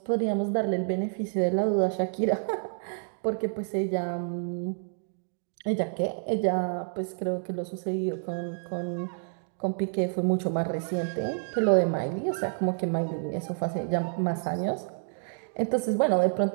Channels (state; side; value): silent; left; digital silence